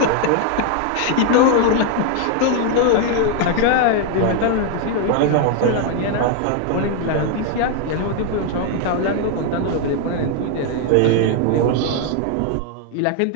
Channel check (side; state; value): both; different; correlation 0.00